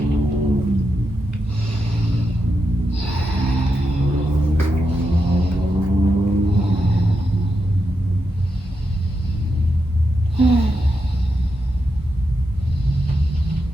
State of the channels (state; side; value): normal; both; correlation 0.86